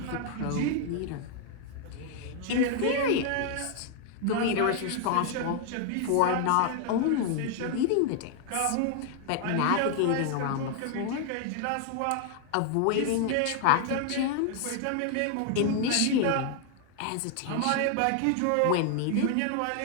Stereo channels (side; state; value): both; different; correlation 0.00